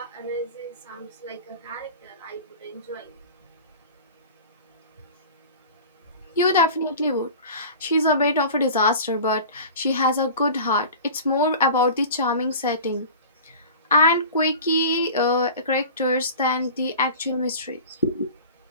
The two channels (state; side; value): inverted; both; correlation -0.38